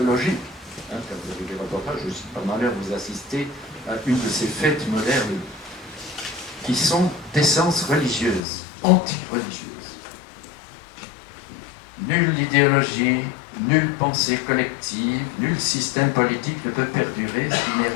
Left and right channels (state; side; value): drops out; right; at 8.4 s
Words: Quand vous avez des reportages, je suis pas malheur, vous assistez à une de ces fêtes modernes qui sont d'essence religieuse, anti-religieuse. Nulle idéologie, nulle pensée collective, nul système politique ne peut perdurer s'il n'est